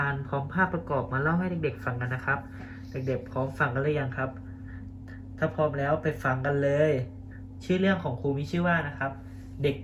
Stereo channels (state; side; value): identical; both; correlation 1.00